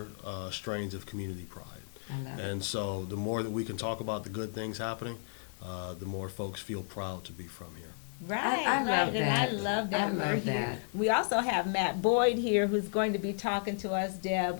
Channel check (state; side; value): silent; right; 55 dB below the other